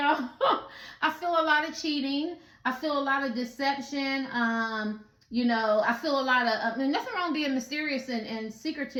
I feel a lot of cheating. I feel a lot of deception. I feel a lot of, nothing wrong being mysterious and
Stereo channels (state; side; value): identical; both; correlation 1.00